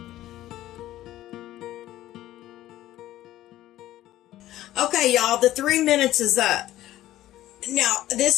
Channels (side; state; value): right; quieter; 14.4 dB